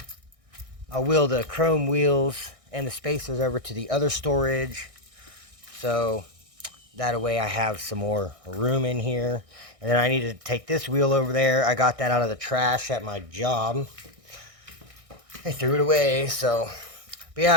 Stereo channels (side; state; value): left; late; 1.6 ms